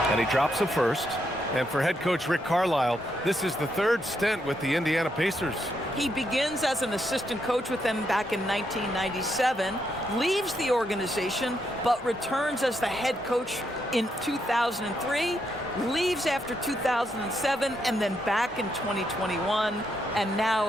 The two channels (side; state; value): both; normal; correlation 0.79